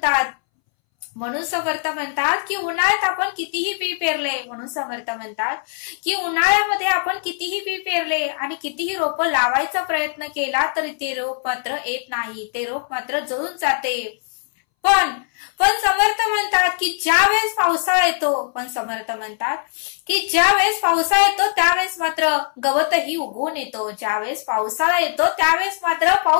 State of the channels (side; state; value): right; silent; 63 dB below the other